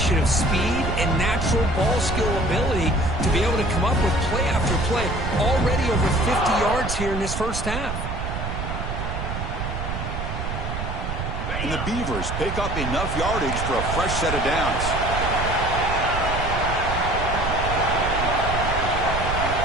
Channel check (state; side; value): noise; right; rumble, 4 dB below the sound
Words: of speed and natural ball skill ability to be able to come up with play after play. Already over 50 yards here in this 1st half. And the Beavers pick up enough yardage for a fresh set of downs.